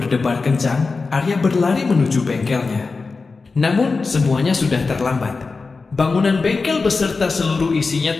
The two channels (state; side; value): quieter; right; 4.2 dB